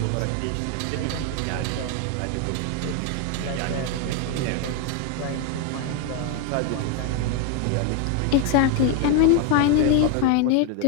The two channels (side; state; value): both; different; correlation 0.01